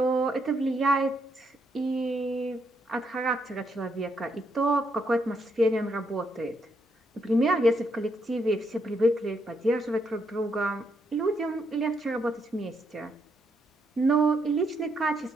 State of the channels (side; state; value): both; normal; correlation 0.77